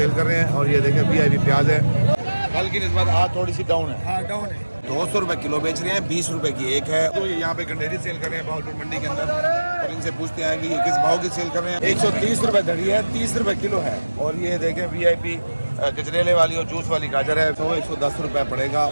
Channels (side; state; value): both; inverted; correlation -1.00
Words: कर रहे हैं। और ये देखें VIP प्याज है, कल की निस्बत आज थोड़ी सी डाउन है। हाँ डाउन है। 200 रुपए किलो बेच रहे हैं, 20 रुपए की एक है। तो ये यहाँ पे गंडेरी सेल कर रहे हैं भावलपुर मंडी के अंदर। और इनसे पूछते हैं कि ये किस भाव की सेल कर रहे हैं। 130 रुपए धड़ी है, 30 रुपए किलो है। और ये देखें VIP गजरेले वाली और जूस वाली गाजर है, तो 110 रुपए पड़ेगा।